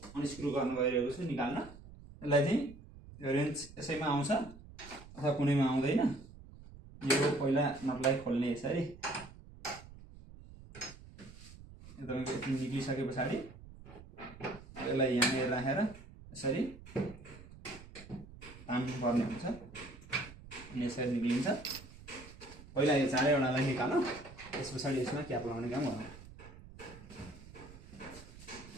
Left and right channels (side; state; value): right; noise; rumble, 18 dB below the sound